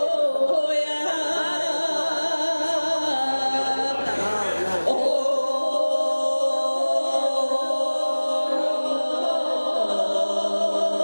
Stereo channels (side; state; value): both; inverted; correlation -1.00